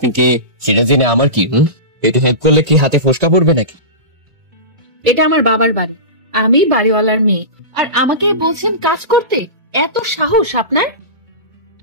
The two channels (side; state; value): left; late; 2.2 ms